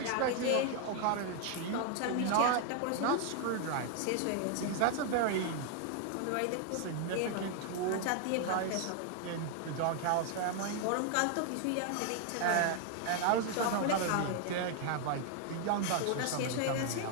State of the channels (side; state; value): both; different; correlation 0.00